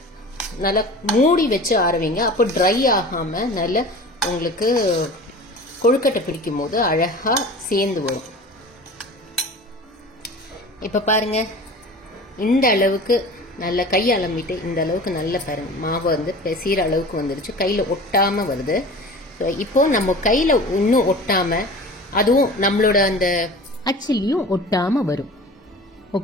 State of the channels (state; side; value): normal; both; correlation 0.38